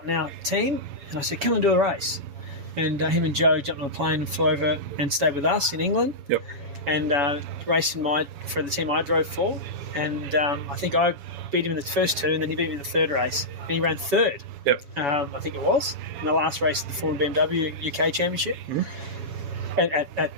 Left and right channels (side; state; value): left; late; 7.1 ms